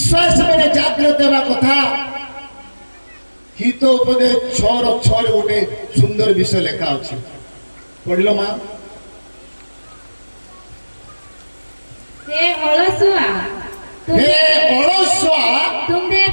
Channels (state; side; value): inverted; both; correlation -1.00